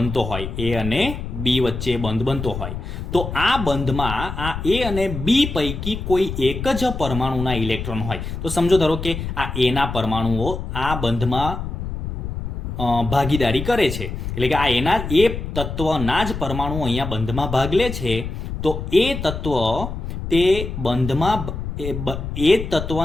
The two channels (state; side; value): noise; left; rumble, 6 dB below the sound